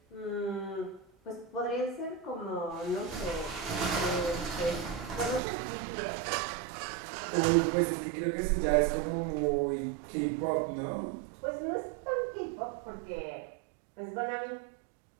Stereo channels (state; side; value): drops out; left; at 5.4 s